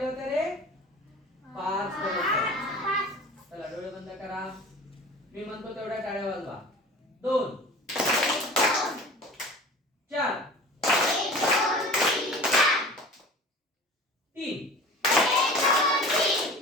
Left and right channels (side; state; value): both; normal; correlation 0.39